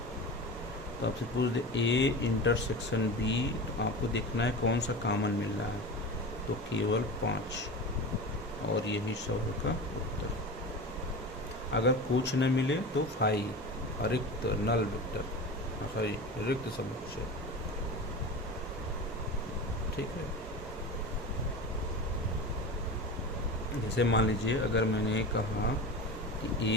तो आपसे पूछ दे ए इंटरसेक्शन बी, तो आपको देखना है कौन सा कॉमन मिल रहा है। तो केवल 5 और यही सवाल का उत्तर। अगर कुछ न मिले तो 5 रिक्त नल वेक्टर, सॉरी रिक्त समुच्चय। ठीक है, जैसे मान लीजिए अगर मैंने कहा कि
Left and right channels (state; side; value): normal; both; correlation 0.29